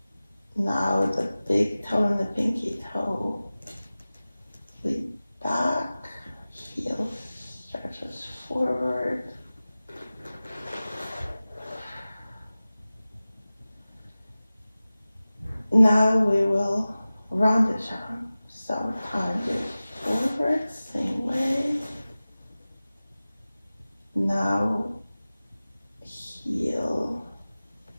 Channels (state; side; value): inverted; both; correlation -0.97